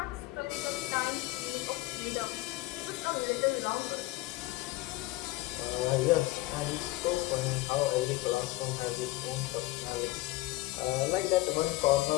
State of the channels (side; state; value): right; quieter; 19.4 dB